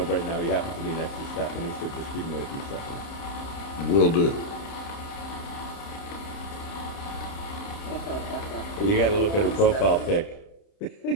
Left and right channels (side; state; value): right; late; 30 ms